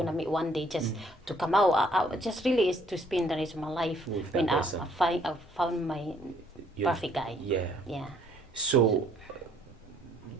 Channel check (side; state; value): both; normal; correlation 0.64